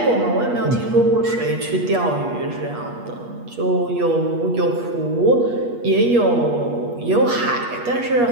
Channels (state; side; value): late; left; 8.4 ms